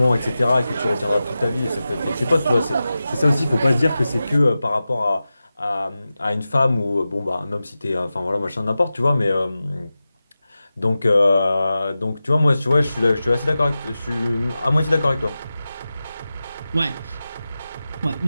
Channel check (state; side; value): inverted; both; correlation -0.94